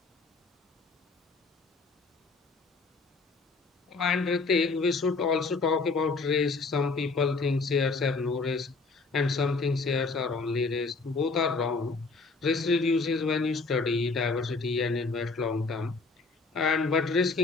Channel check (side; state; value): right; quieter; 4.1 dB